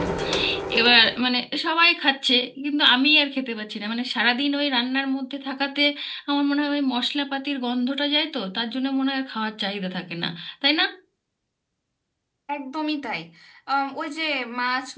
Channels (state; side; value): identical; both; correlation 1.00